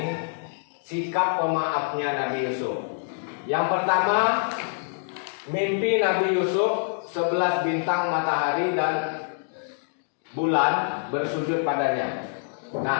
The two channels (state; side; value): silent; right; digital silence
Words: sikap pemaafnya Nabi Yusuf. Yang pertama, mimpi Nabi Yusuf 11 bintang, matahari dan bulan bersujud padanya.